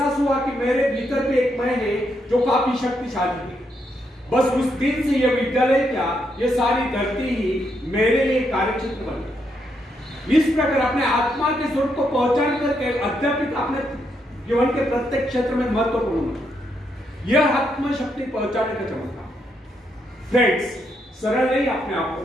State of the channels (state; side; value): normal; both; correlation 0.78